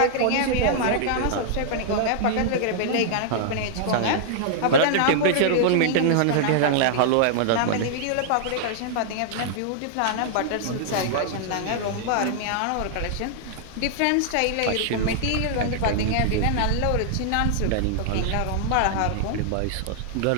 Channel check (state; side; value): different; both; correlation -0.01